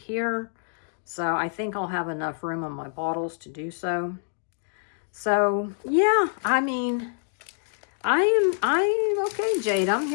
So I think I'll have enough room on my bottles to do so. So yeah, I mean, I'm okay, Jade. I'm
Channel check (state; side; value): silent; right; digital silence